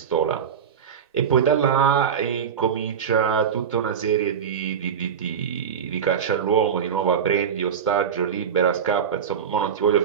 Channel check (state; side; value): quieter; left; 7.5 dB